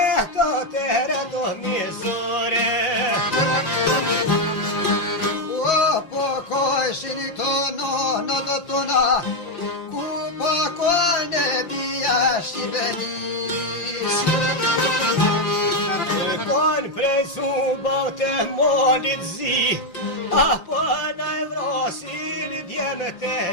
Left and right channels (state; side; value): late; right; 5.8 ms